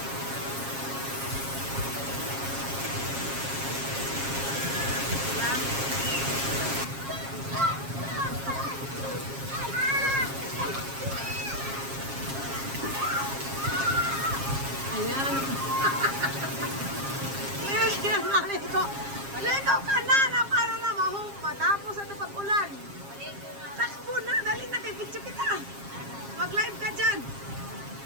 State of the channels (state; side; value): late; left; 7.4 ms